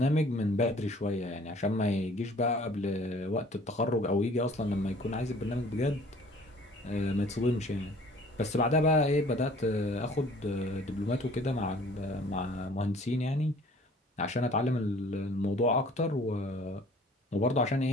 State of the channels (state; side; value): normal; both; correlation 0.52